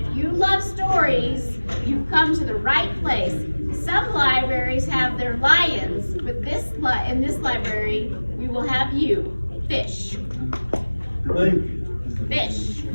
you love stories, you've come to the right place. Some libraries have their lions, but in this library, we will have you. Fish." Fish.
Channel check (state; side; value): inverted; both; correlation -1.00